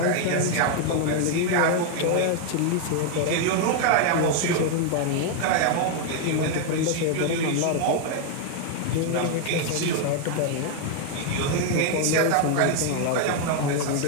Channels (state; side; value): different; both; correlation 0.00